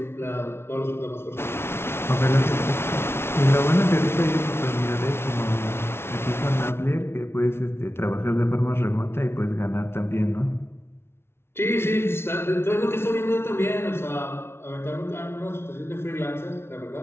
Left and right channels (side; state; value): right; late; 0.12 ms